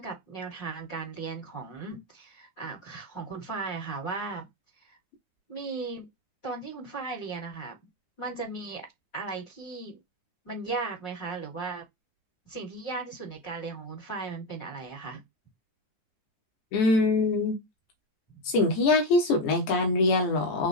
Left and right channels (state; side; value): late; right; 9.7 ms